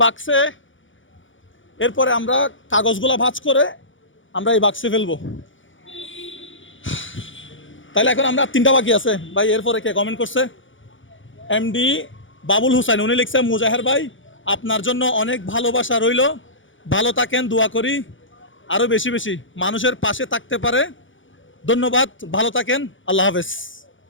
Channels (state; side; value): late; right; 0.56 ms